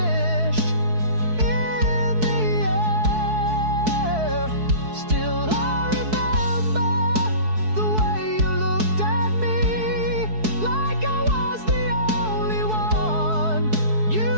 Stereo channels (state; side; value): late; left; 4.6 ms